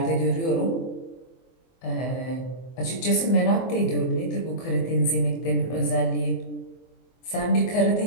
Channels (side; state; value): right; late; 24 ms